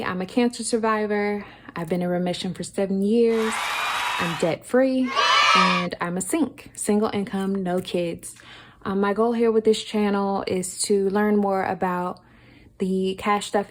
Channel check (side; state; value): both; identical; correlation 1.00